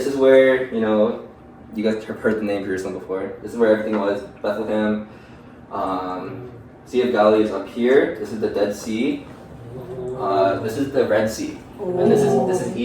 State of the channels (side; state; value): both; identical; correlation 1.00